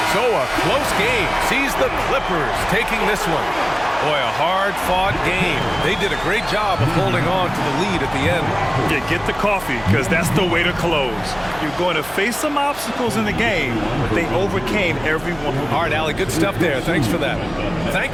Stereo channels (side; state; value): right; noise; hum, 19 dB below the sound